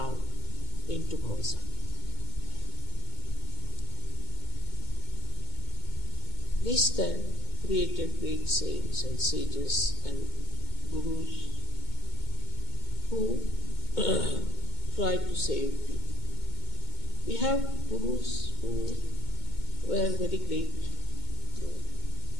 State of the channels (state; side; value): late; right; 2.2 ms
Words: into Bhavasagar. This then created great saints and sages and gurus who tried to save people. We have gurus who were very great,